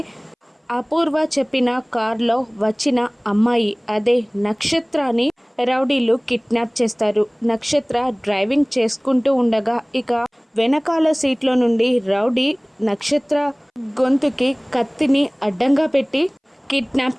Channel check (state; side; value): identical; both; correlation 1.00